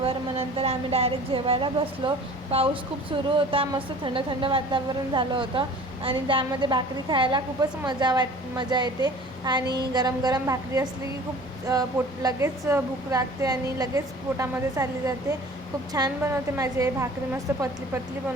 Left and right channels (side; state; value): both; normal; correlation 0.45